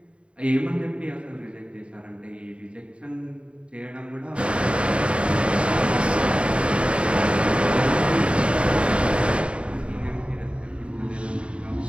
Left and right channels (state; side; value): late; left; 0.058 ms